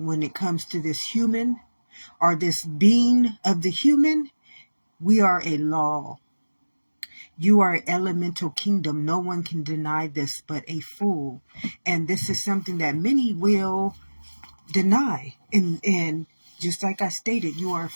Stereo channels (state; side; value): inverted; both; correlation -1.00